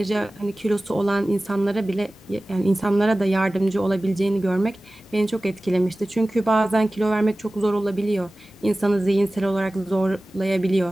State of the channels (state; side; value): normal; both; correlation 0.97